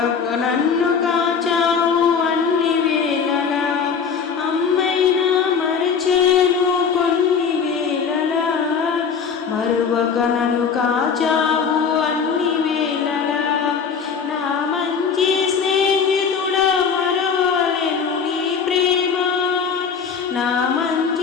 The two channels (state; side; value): quieter; right; 6.2 dB